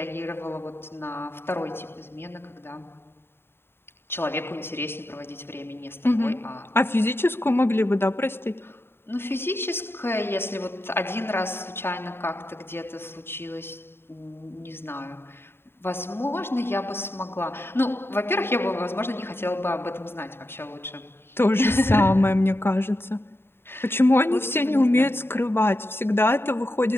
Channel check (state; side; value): late; right; 0.11 ms